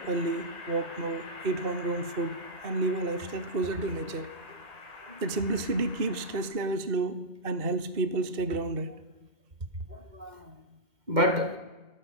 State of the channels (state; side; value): late; left; 2.0 ms